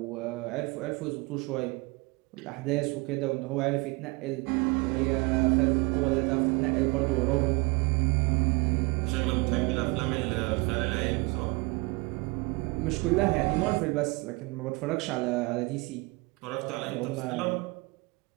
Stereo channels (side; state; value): left; quieter; 26.3 dB